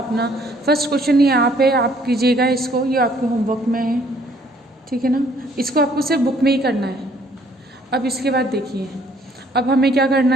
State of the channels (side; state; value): both; normal; correlation 0.62